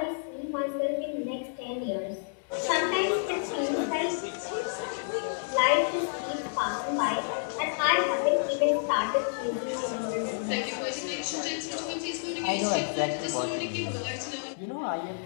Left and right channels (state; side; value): silent; right; digital silence